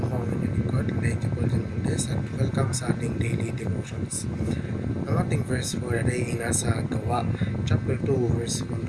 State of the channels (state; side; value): identical; both; correlation 1.00